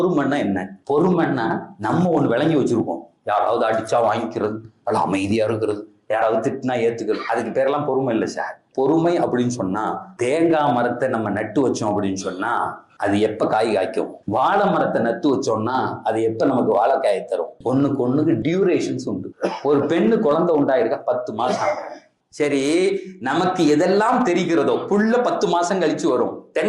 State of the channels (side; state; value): both; identical; correlation 1.00